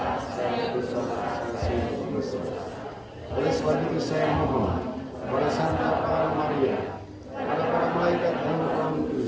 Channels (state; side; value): identical; both; correlation 1.00